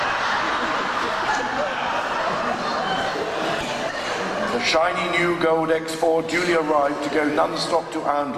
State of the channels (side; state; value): both; identical; correlation 1.00